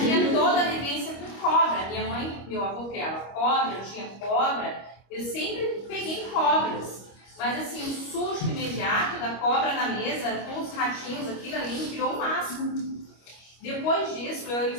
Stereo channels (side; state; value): right; late; 25 ms